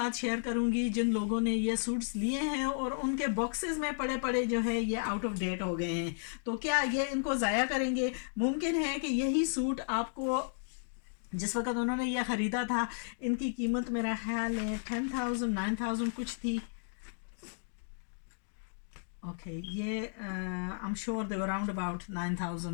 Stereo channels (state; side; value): silent; right; digital silence